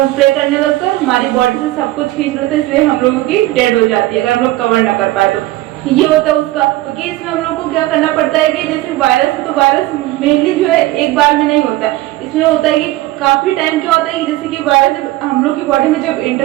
प्ले करने लगता है, हमारी बॉडी से सब कुछ खींच लेता है, इसलिए हम लोगों की डेड हो जाती है अगर हम लोग कवर ना कर पाए तो। ये होता है उसका। क्योंकि तो इसमें हम लोग को क्या करना पड़ता है कि जैसे वायरस है तो वायरस मेनली जो है एक बार में नहीं होता है, इसमें होता है कि काफी टाइम क्या होता है कि जैसे कि वायरस हम लोग की बॉडी में जब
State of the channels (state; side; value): quieter; left; 17.2 dB